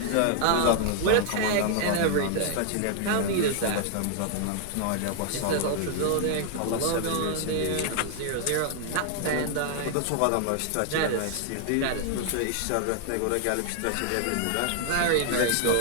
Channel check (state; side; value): different; both; correlation 0.00